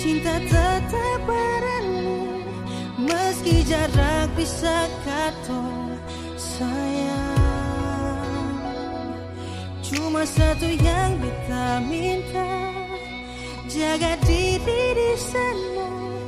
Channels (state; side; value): identical; both; correlation 1.00